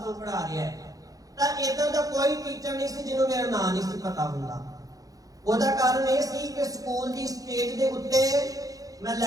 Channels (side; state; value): left; late; 0.17 ms